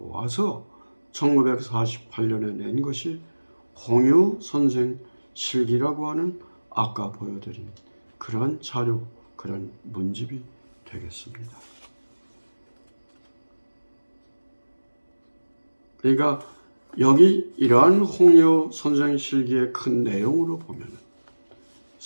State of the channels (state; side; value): inverted; both; correlation -1.00